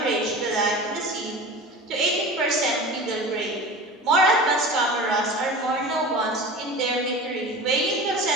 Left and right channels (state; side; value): normal; both; correlation 0.34